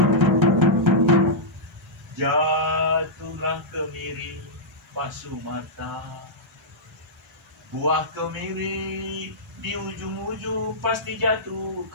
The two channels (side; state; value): both; normal; correlation -0.11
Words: Jatuhlah kemiri Pak Sumarta. Buah kemiri di ujung-ujung pasti jatuh